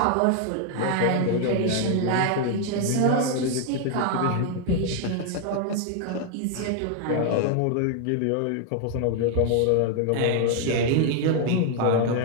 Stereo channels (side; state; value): both; different; correlation 0.00